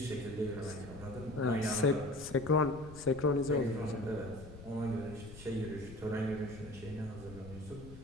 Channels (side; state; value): left; noise; rumble, 15 dB below the sound